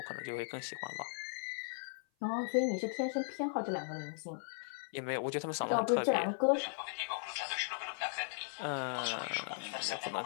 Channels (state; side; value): silent; right; 53 dB below the other